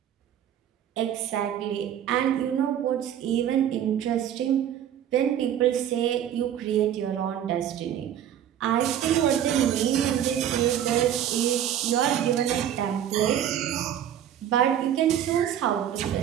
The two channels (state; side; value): quieter; left; 10.3 dB